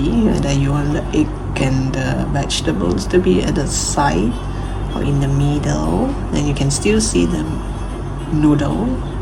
whether you want the egg and the vegetables to be at the side or in the middle, and you can still see the noodle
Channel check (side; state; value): both; identical; correlation 1.00